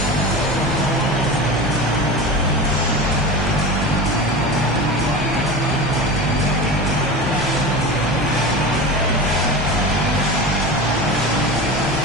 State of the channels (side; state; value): both; normal; correlation 0.28